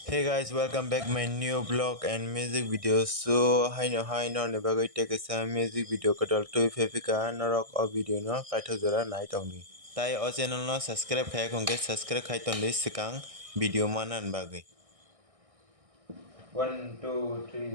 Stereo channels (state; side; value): late; left; 1.6 ms